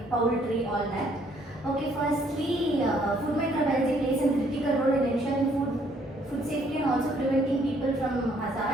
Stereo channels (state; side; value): normal; both; correlation 0.66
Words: poultry, all that. Okay, firstly, food microbiology plays a critical role in ensuring food safety and also preventing people from